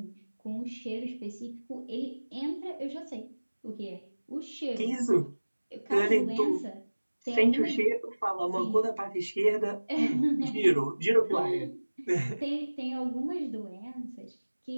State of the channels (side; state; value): both; inverted; correlation -1.00